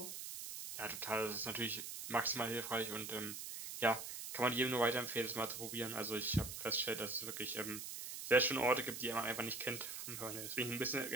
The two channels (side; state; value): right; noise; hiss, 7 dB below the sound